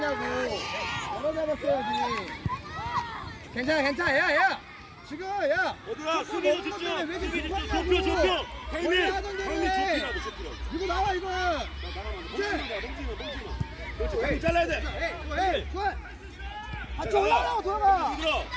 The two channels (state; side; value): identical; both; correlation 1.00